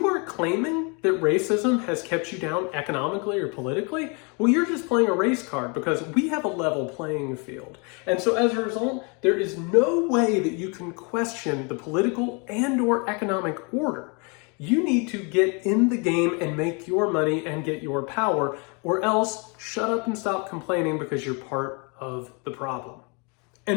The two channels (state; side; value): quieter; right; 33.1 dB